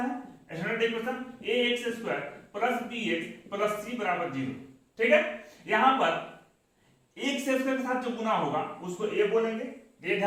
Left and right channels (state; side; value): identical; both; correlation 1.00